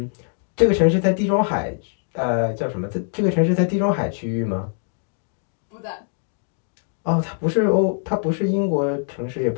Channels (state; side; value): silent; right; 62 dB below the other